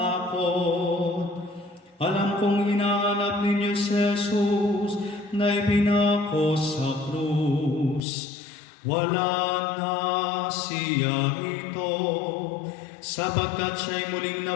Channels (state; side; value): drops out; right; at 8.0 s